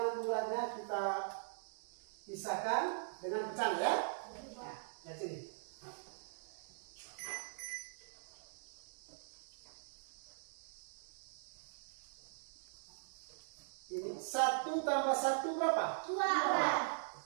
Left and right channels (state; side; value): silent; left; digital silence